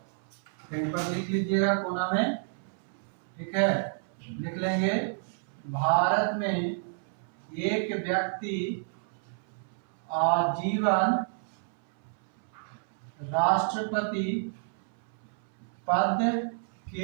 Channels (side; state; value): left; silent; 58 dB below the other